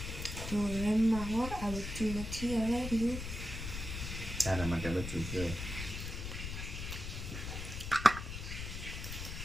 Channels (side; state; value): left; noise; rumble, 6 dB below the sound